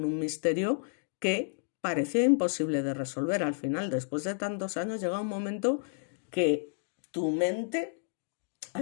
un misterio que parecía imposible de resolver. Al final, después de tantos años, llega un momento que tu mente, a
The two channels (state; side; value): silent; right; digital silence